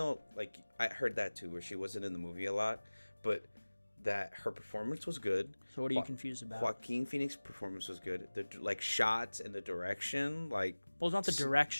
like I heard that too, where she wasn't in the movie a lot, but that her performance was good. So what are you confused about? Joaquin Phoenix's performance was good. The shots and the direction, like. Well, it's not the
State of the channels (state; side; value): inverted; both; correlation -1.00